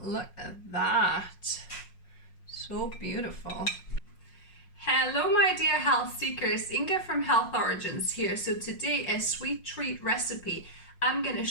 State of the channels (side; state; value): right; late; 5.5 ms